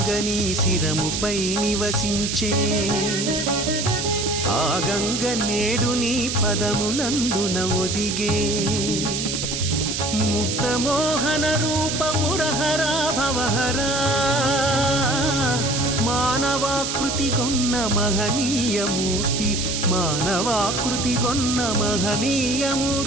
శిరముపై నివసించే, ఆ గంగ నేడు నీ పదములందున ఒదిగే, ముక్తమోహన రూపమురహరా భవహరా, మానవాకృతి గొన్న మహనీయమూర్తి, మానవాకృతి గొన్న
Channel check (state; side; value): noise; right; hiss, 2 dB below the sound